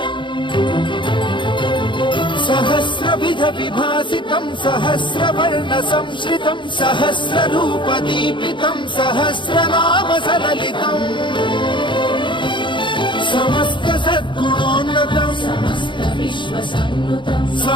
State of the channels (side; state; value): right; late; 0.23 ms